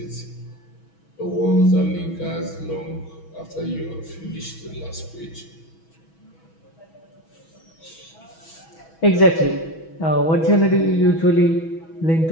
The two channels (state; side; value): late; right; 6.2 ms